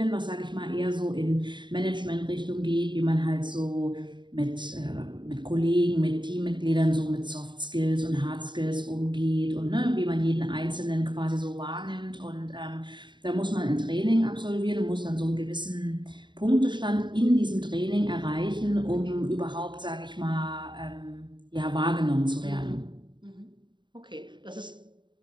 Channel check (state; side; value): late; left; 0.22 ms